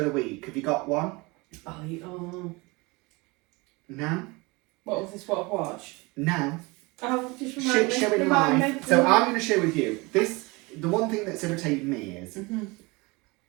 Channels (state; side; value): quieter; left; 25.4 dB